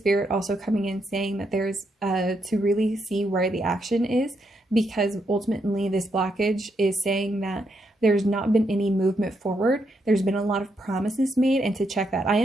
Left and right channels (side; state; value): both; normal; correlation 0.79